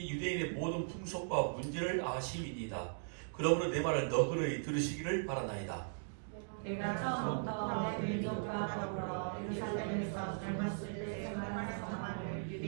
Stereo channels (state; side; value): silent; left; digital silence